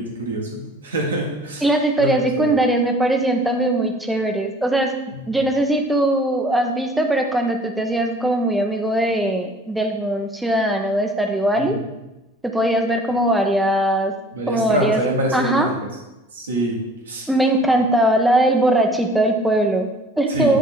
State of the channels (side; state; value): both; normal; correlation 0.51